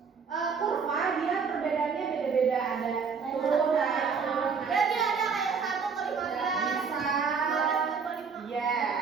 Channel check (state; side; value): quieter; left; 5.7 dB